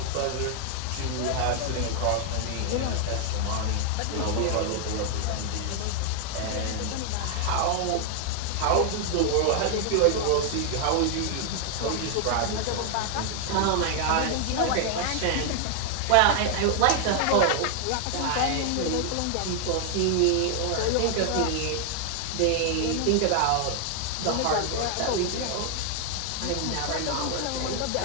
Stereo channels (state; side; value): different; both; correlation 0.00